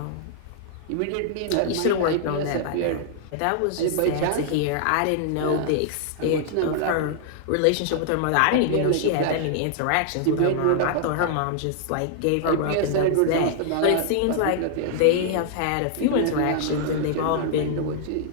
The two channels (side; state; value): both; different; correlation -0.01